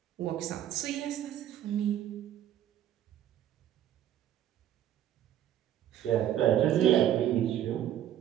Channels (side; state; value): left; quieter; 11.3 dB